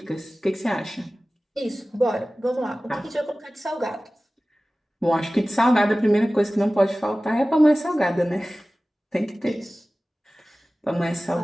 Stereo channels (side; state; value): both; normal; correlation 0.97